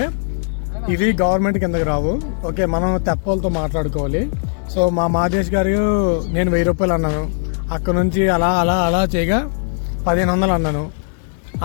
ఇది గవర్నమెంట్ కిందకి రావు. ఓకే, మనం తెప్పలతో మాట్లాడుకోవాలి. సో మా మాదేశ్ గారు నేను 1000 రూపాయలు అన్నాను, అక్కడ నుంచి అలా అలా అలా చేయగా 1500 అన్నాను.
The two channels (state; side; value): silent; right; 67 dB below the other